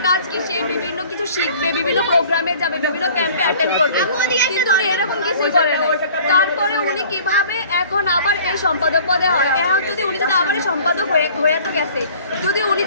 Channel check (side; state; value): both; inverted; correlation -0.49